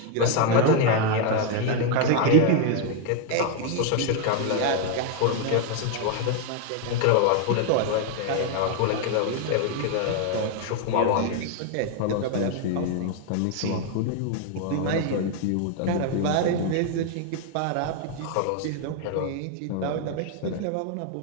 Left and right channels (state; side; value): different; both; correlation 0.01